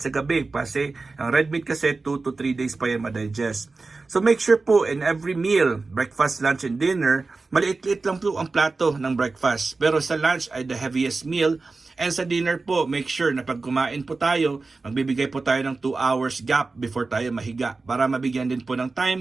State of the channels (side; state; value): left; quieter; 3.8 dB